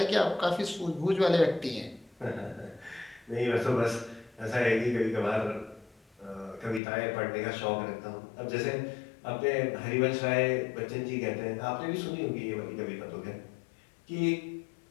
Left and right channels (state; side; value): drops out; right; at 6.8 s